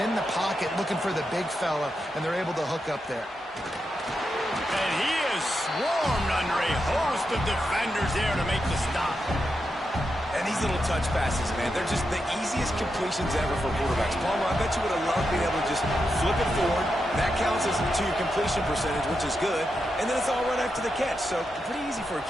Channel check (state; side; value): normal; both; correlation 0.86